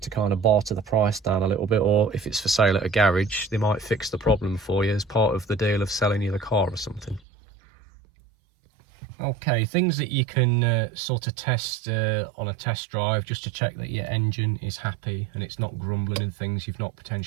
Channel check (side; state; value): left; drops out; at 7.2 s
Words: to kind of barter the price down a little bit, or if it's for sale at a garage, they might fix the problem for you as part of the deal of selling you the car or something. Okay, things that you can sort of test on a test drive just to check that your engine is happy and it's not grumbling and things, you've not